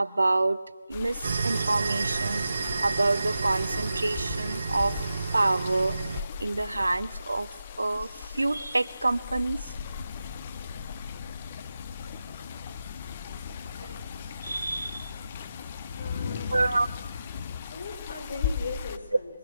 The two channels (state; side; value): inverted; both; correlation -0.91